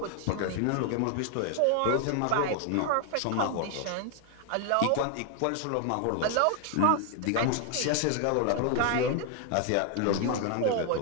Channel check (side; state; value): both; different; correlation 0.00